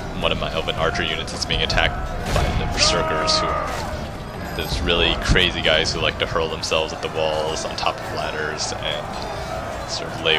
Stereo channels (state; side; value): identical; both; correlation 1.00